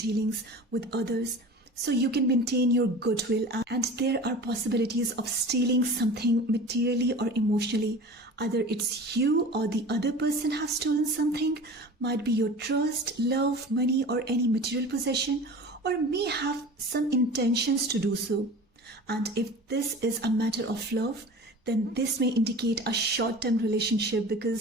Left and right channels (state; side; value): normal; both; correlation 0.37